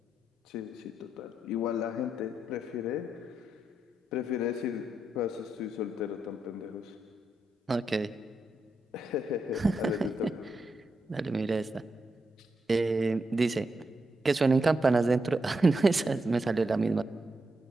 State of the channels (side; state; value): both; normal; correlation 0.84